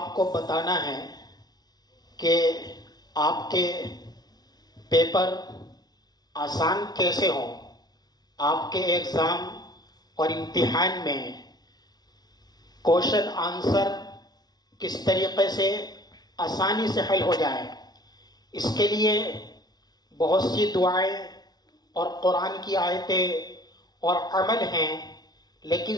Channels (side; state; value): right; late; 0.19 ms